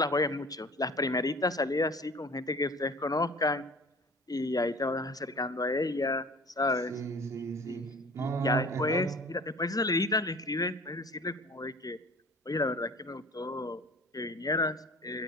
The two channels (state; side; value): normal; both; correlation 0.44